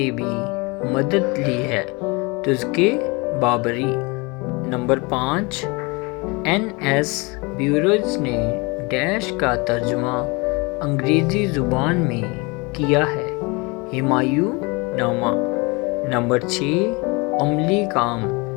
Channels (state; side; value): quieter; right; 27.4 dB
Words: بھی مدد لی ہے، تذکرہ بابری۔ نمبر 5 این ایس بیروز نے ڈیش کا ترجمہ انگریزی زبان میں کیا ہے، ہمایوں نامہ۔ نمبر 6 عملی کام،